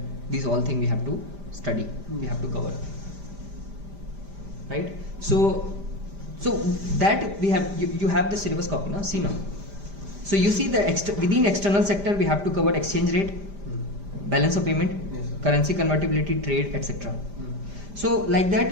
these all things we have to study, we have to cover. Right? So that we have, you have the syllabus copy now, see now. So you see the within external sector we have to cover exchange rate, balance of payment, currency convertibility, trade, etc. So like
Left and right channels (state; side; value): late; left; 5.0 ms